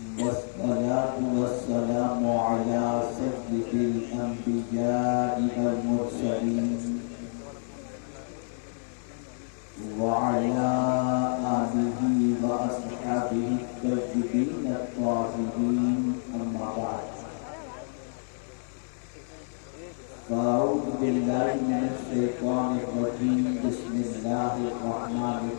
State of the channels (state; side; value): silent; right; digital silence